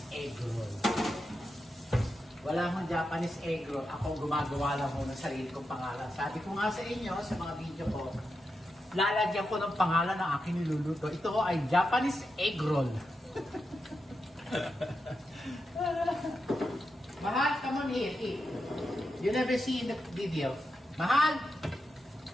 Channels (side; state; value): both; normal; correlation 0.87